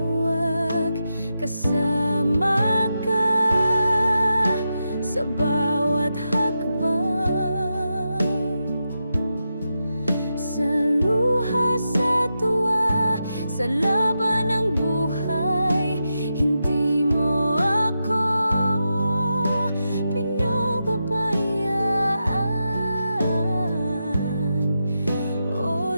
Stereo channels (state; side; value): inverted; both; correlation -0.88